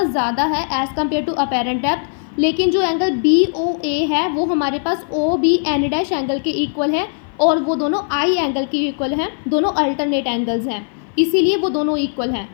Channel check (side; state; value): right; silent; 56 dB below the other